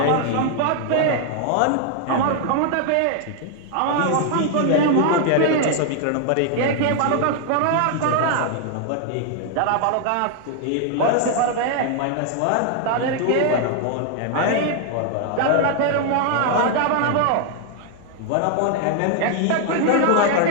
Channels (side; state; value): both; different; correlation 0.00